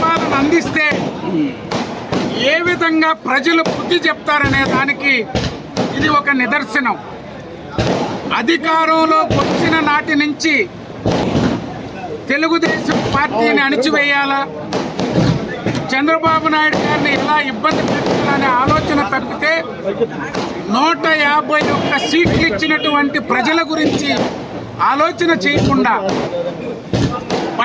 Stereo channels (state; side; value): identical; both; correlation 1.00